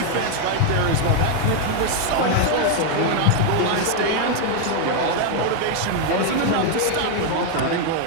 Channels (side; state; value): both; different; correlation 0.01